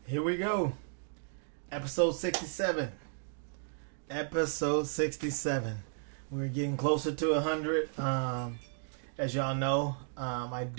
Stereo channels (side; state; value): left; silent; digital silence